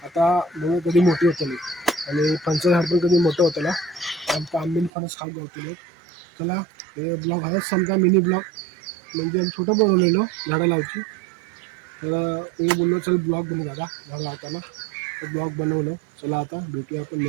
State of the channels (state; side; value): drops out; left; at 4.9 s